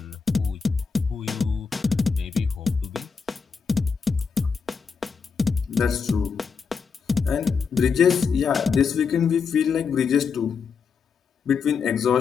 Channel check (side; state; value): right; quieter; 5.7 dB